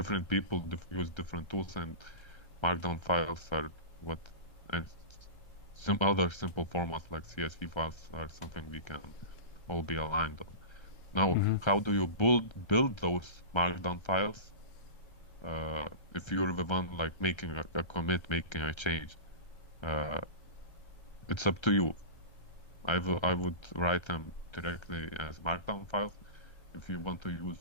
people use different tools, and markdown files are what, and some other simple formats like CSV files are something we can all be aligned on. Now, how do you build those markdown files? If you're the one like making a commit, making a change, it's up to you. I would write them directly as markdown files. If you want to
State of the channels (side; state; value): right; late; 1.3 ms